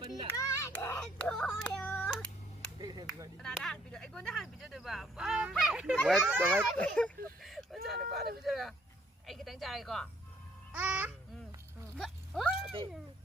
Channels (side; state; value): both; normal; correlation 0.65